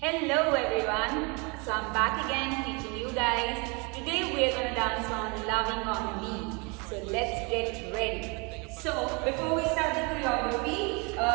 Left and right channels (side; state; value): left; quieter; 30.6 dB